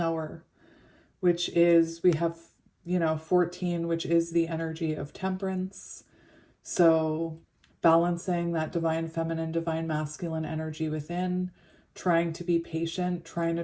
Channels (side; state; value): both; identical; correlation 1.00